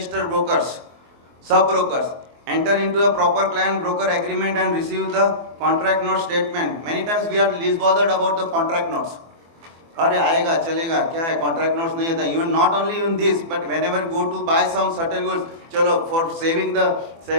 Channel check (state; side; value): late; left; 24 ms